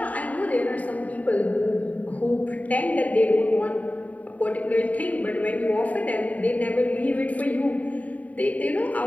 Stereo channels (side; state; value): right; late; 0.071 ms